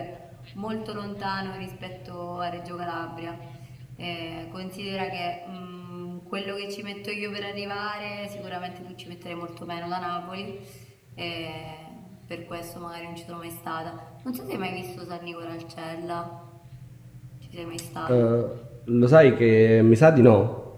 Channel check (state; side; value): identical; both; correlation 1.00